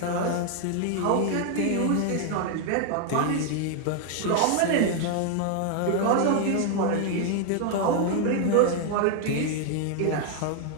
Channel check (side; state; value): both; different; correlation 0.00